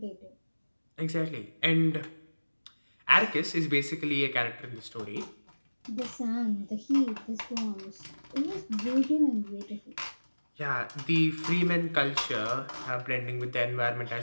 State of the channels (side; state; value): both; inverted; correlation -1.00